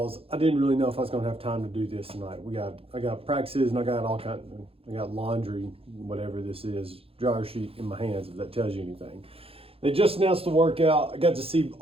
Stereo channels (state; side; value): late; left; 0.27 ms